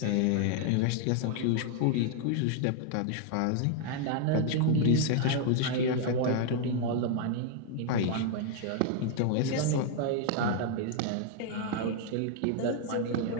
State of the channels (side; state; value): both; different; correlation 0.00